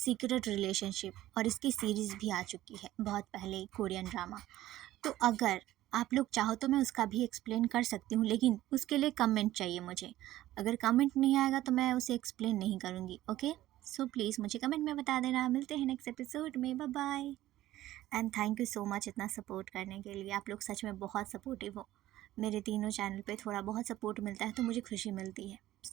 रिलेशनशिप, और इसकी सीरीज़ भी आ चुकी है बहुत पहले, कोरियन ड्रामा। तो अगर आप लोग चाहो तो मैं उसका भी एक्सप्लेन कर सकती हूँ, लेकिन उसके लिए कमेंट चाहिए मुझे। अगर कमेंट नहीं आएगा तो मैं उसे एक्सप्लेन नहीं करूँगी। ओके, सो प्लीज़ मुझे कमेंट में बता देना। मिलते हैं नेक्स्ट एपिसोड में। Bye bye. And thank you so much इतना सपोर्ट करने के लिए। आप लोग सच में बहुत सपोर्टिव हो। मेरे तीनों चैनल पे थोड़ा बहुत सपोर्ट मिलता है तो मुझे खुशी मिलती है।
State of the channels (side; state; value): left; quieter; 14.9 dB